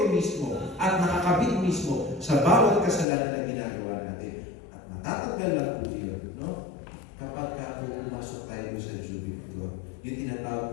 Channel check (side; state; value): right; drops out; at 3.1 s